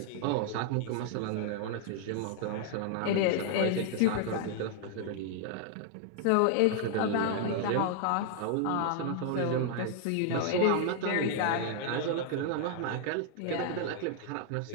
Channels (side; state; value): both; different; correlation 0.00